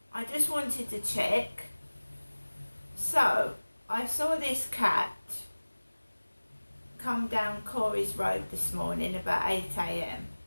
I just wanted to check. So I saw this cat come down Corey's Road this morning about 8 a.m.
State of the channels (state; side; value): inverted; both; correlation -1.00